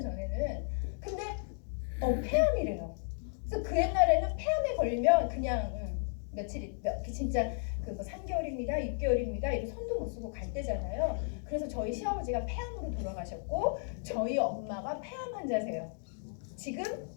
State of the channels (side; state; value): right; silent; digital silence